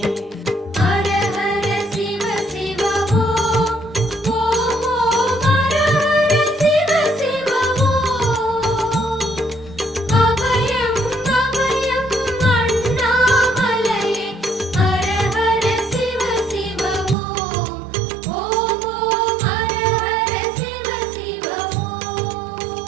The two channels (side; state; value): left; drops out; at 17.2 s